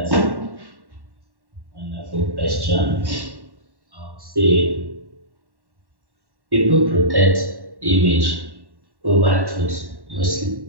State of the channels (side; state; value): left; late; 1.1 ms